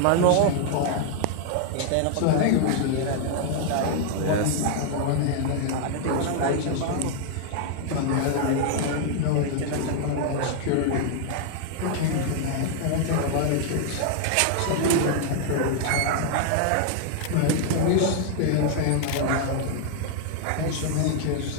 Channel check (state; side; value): different; both; correlation 0.00